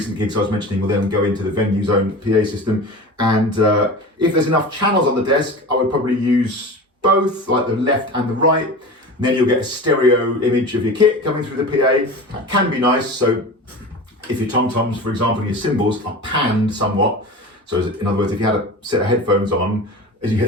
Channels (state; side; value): normal; both; correlation 0.33